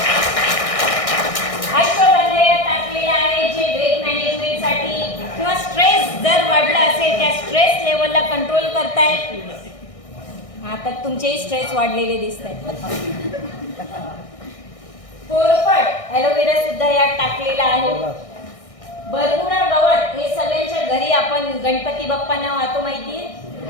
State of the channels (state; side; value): late; right; 1.6 ms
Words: अश्वगंधा टाकलेला आहे जे वेट मॅनेजमेंट साठी किंवा स्ट्रेस जर वाढला असेल त्या स्ट्रेस लेवलला कंट्रोल करतायत। आता तुमचेही स्ट्रेस वाढलेले दिसत आहेत। कोरफड ॲलोवेरा सुद्धा यात टाकलेला आहे। बरमुडा गवत हे सगळ्यांच्या घरी आपण गणपती बाप्पांना वाहतो, माहितीये